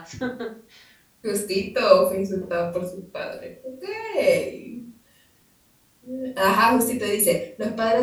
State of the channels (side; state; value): both; identical; correlation 1.00